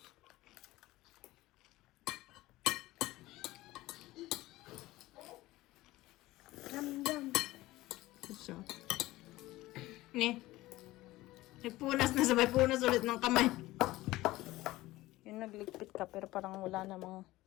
Yum yum. So. Ni. Nagpunas na sabay punas ulit ng kamay. Yung nagligpit ka pero parang wala namang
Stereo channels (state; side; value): quieter; right; 17.8 dB